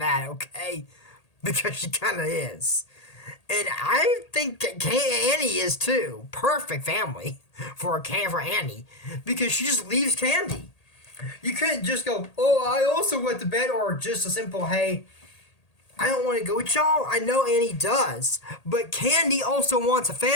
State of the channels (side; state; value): right; late; 1.8 ms